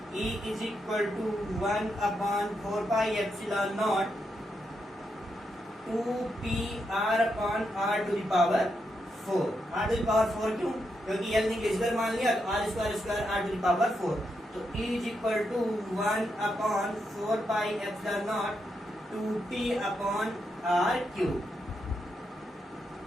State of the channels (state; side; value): normal; both; correlation 0.83